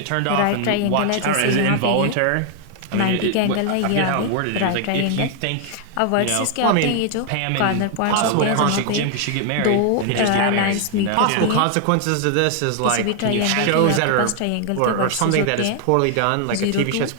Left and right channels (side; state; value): both; different; correlation 0.00